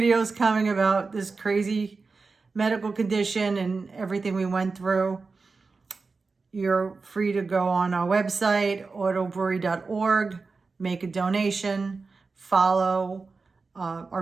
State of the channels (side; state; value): left; quieter; 4.3 dB